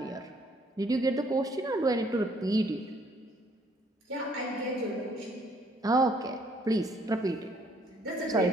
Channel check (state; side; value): normal; both; correlation 0.64